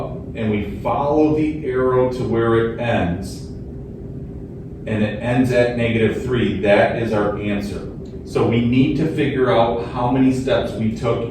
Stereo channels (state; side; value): identical; both; correlation 1.00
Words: and we follow the arrow to where it ends, and it ends at -3, that is our answer. So we need to figure out how many steps we took